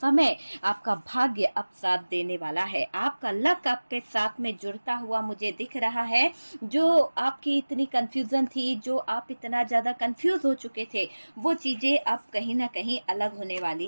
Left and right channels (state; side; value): inverted; both; correlation -1.00